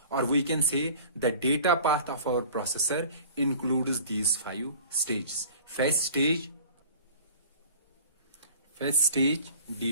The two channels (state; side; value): inverted; both; correlation -0.44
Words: or we can say the data path of our processor includes these 5 stages: fetch stage,